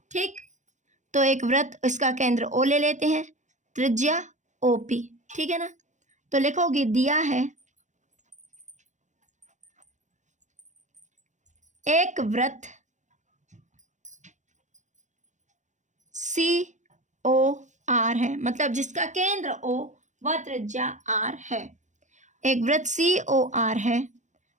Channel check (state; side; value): late; left; 0.35 ms